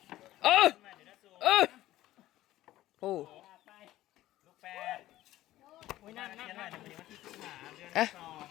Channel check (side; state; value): right; quieter; 15.1 dB